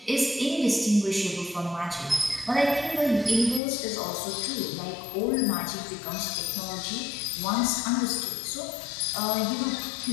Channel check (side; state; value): right; drops out; at 3.6 s